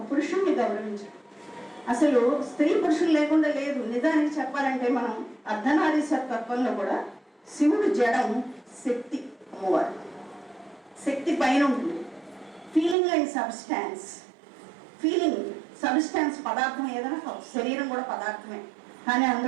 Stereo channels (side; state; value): left; drops out; at 13.0 s